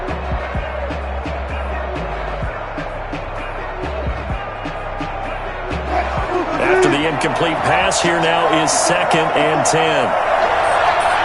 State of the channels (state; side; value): identical; both; correlation 1.00